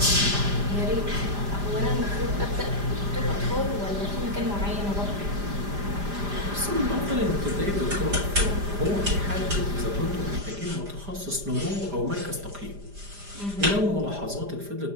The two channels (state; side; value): late; left; 5.0 ms